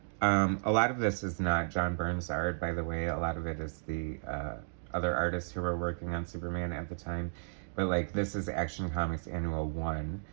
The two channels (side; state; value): left; silent; digital silence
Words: a lot of this is not John Byrne's art, by the way. A lot of it is the other artists who were working on Superman at the time. But like, this is Action Comics Annual 1